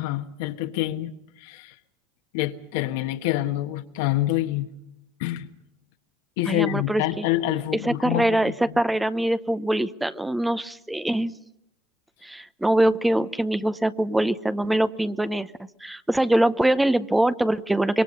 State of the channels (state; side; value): normal; both; correlation 0.75